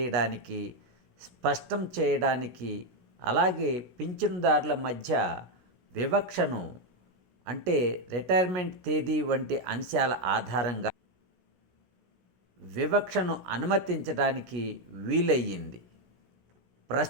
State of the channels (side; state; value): left; late; 16 ms